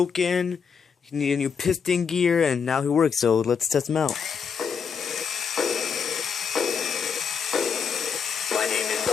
He needed a new piston gear, and now he works, so let's test him out. My name is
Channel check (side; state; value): right; quieter; 6.4 dB